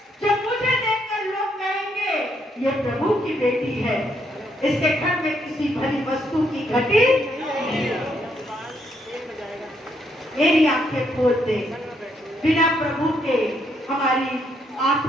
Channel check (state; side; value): normal; both; correlation 0.74